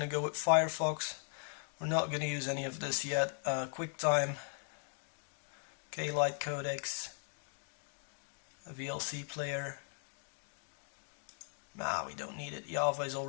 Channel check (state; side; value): silent; right; 52 dB below the other